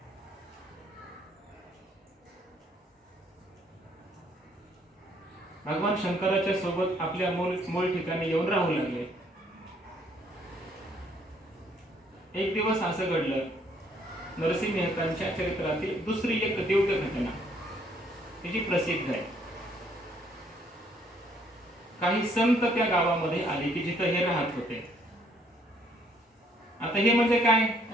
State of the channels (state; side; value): normal; both; correlation 0.66